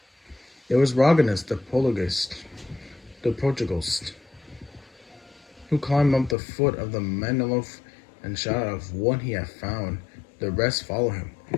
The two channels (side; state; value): right; drops out; at 6.4 s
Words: It was Roganus the Portugalist, who climbed up the foot of the monolith and shouted of what he had found. The rest followed him